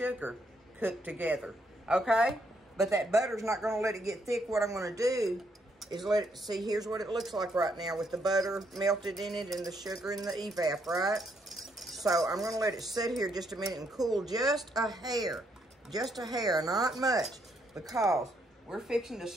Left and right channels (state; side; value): normal; both; correlation 0.74